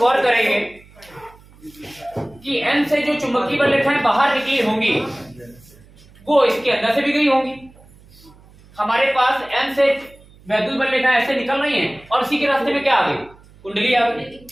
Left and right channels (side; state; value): right; noise; hum, 25 dB below the sound